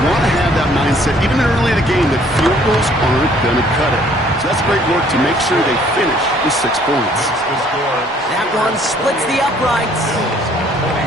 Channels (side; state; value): both; normal; correlation 0.60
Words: want to have that mindset, even early in the game, that field goals aren't going to cut it. So that's great work to make sure they finish with 6 points. That one splits the uprights.